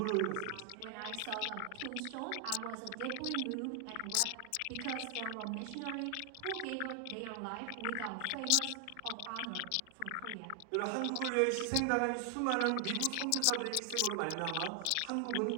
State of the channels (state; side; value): different; both; correlation 0.00